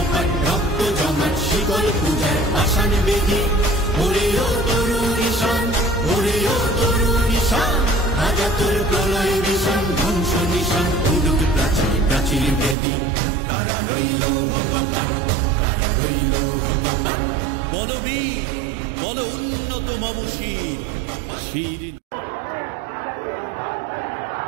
রক্ত জমাট শিকল পূজার পাষাণ বেদি, ওরেও তরুণ ঈশান, ওরেও তরুণ ঈশান, রাজা তোর প্রলয় বিষাণ, ধ্বংস নিশান, উডুক প্রাচীর প্রাচীর বেদি, কারা রইল কপাট, কারা রইল কপাট। বলবীর বল উন্নত মম শির, শির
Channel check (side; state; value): left; drops out; at 12.8 s